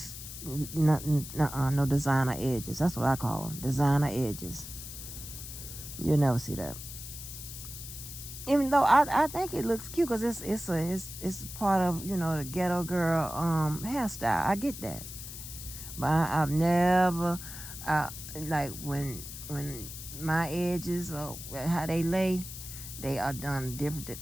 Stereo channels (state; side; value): noise; left; hiss, 11 dB below the sound